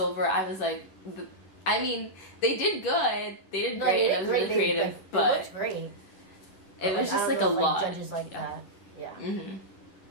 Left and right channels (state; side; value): late; right; 10 ms